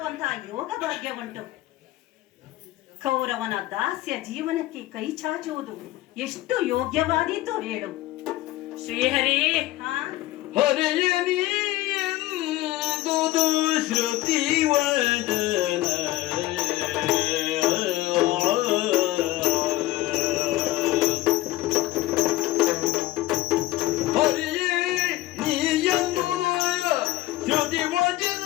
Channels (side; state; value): right; quieter; 16.9 dB